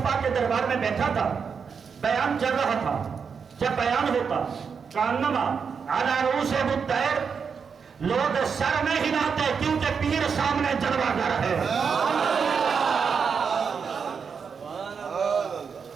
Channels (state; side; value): quieter; left; 6.1 dB